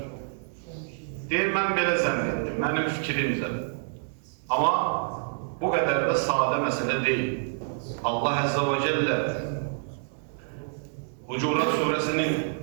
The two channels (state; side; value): silent; left; digital silence